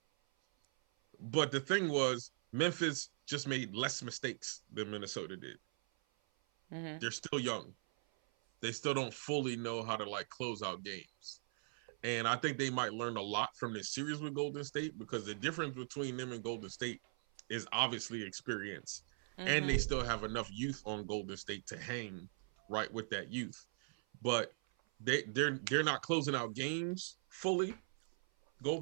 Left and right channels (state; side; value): silent; left; 51 dB below the other